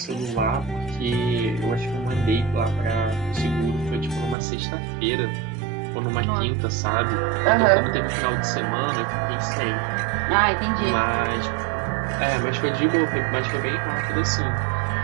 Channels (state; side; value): drops out; left; at 4.4 s